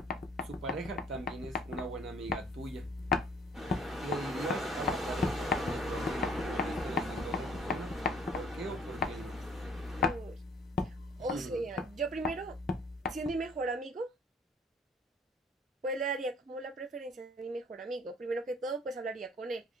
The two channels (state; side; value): normal; both; correlation 0.57